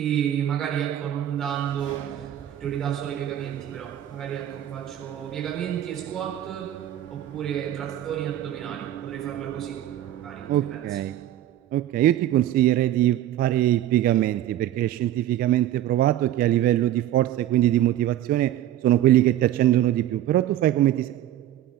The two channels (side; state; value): left; quieter; 12.6 dB